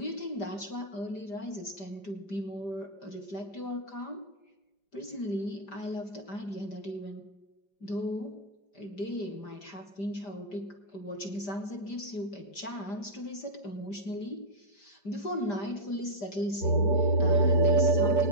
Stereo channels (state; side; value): late; right; 5.0 ms